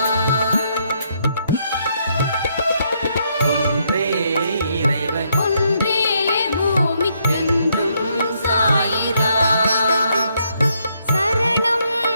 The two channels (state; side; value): inverted; both; correlation -0.74